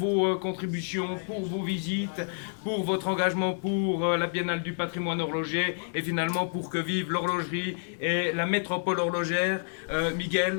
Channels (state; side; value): silent; right; digital silence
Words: contributions, pour vos visites, pour votre engagement pour la biennale du patrimoine horloger et finalement pour que vive l'horlogerie et la métropole horlogère.